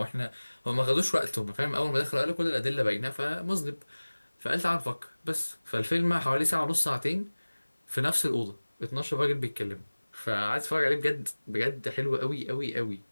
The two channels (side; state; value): both; inverted; correlation -1.00